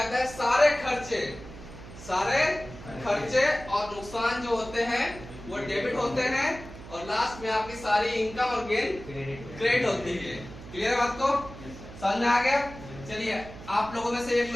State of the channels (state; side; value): noise; right; hum, 15 dB below the sound